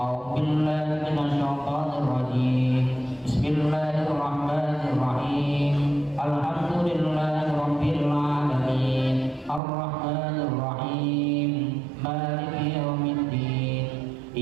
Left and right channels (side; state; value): left; drops out; at 9.6 s